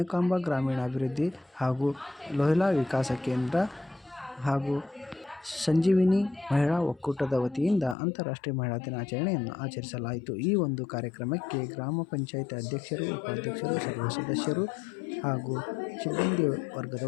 ಗ್ರಾಮೀಣಾಭಿವೃದ್ಧಿ ಹಾಗೂ ಲೋಹಿಲಾ ವಿಕಾಸ ಕೇಂದ್ರ ಹಾಗೂ ಸಂಜೀವಿನಿ ಮಹಿಳಾ ಒಕ್ಕೂಟದ ವತಿಯಿಂದ ಅಂತಾರಾಷ್ಟ್ರೀಯ ಮಹಿಳಾ ದಿನಾಚರಣೆಯನ್ನು ಆಚರಿಸಲಾಯಿತು. ಈ ಒಂದು ಕಾರ್ಯಕ್ರಮಕ್ಕೆ ಗ್ರಾಮ ಪಂಚಾಯತ್ ಅಧ್ಯಕ್ಷರು, ಉಪಾಧ್ಯಕ್ಷರು, ಸರ್ವ ಸದಸ್ಯರು ಹಾಗೂ ಸಿಬ್ಬಂದಿ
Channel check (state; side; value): drops out; right; at 8.0 s